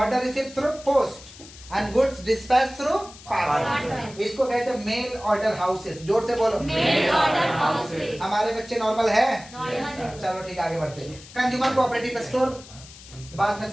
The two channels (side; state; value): left; noise; hiss, 19 dB below the sound